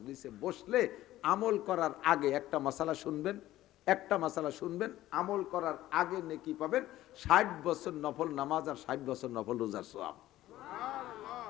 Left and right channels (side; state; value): right; quieter; 14.9 dB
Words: বসলে আমল করার আগে একটা মাসালা শুনবেন, একটা মাসালা শুনবেন, আমল করার আগে নেকি পাবেন 60 বছর নফল নামাজ আর 60 বছর নফল রোজার সওয়াব।